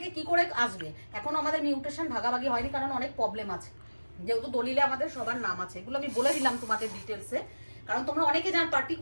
কি করে আসবে? এখনো আমাদের মিউটেশন ভাগাভাগি হয়নি, কারণ অনেক প্রবলেম আছে, যেহেতু দলিলে আমাদের সবার নাম আছে। এগুলো আমি বলে দিলাম তোমাদের ডিটেলসে, কারণ তোমরা অনেকে জান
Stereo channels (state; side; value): inverted; both; correlation -1.00